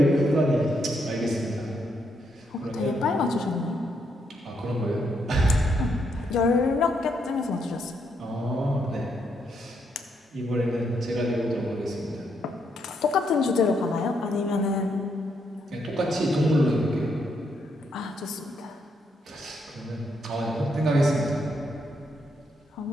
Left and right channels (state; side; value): normal; both; correlation 0.77